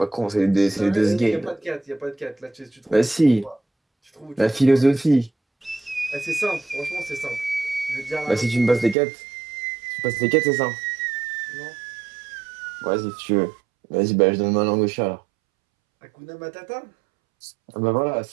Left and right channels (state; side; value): drops out; left; at 9.0 s